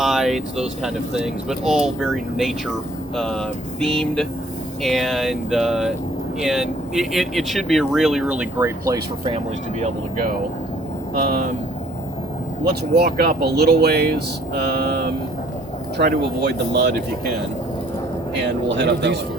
those kind of things, but all very nature themed, and it should be a really, really great place for families to be able to go. Let's walk up a little ways. Try to avoid the mud if you can, and we'll head up that way.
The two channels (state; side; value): normal; both; correlation 0.59